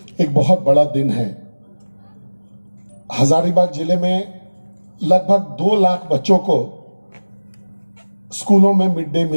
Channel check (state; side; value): inverted; both; correlation -1.00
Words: एक बहुत बड़ा दिन है। हजारीबाग जिले में लगभग 2 लाख बच्चों को स्कूलों में मिड डे